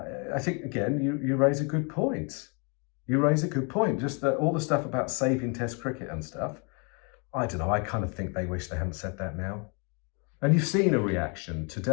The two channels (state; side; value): quieter; right; 34.7 dB